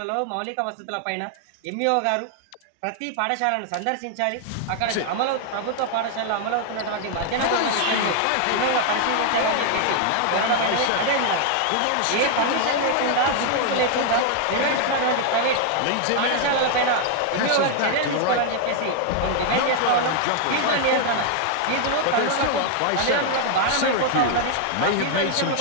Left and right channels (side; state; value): both; different; correlation 0.00